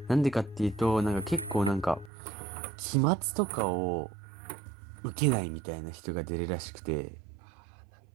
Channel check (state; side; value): drops out; left; at 2.1 s